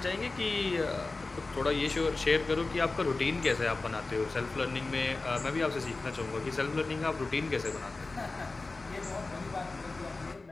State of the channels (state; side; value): quieter; right; 3.5 dB